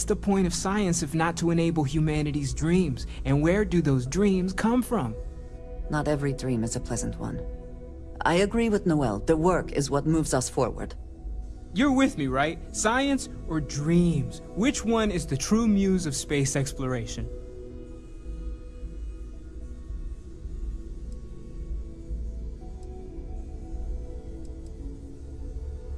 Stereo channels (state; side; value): identical; both; correlation 1.00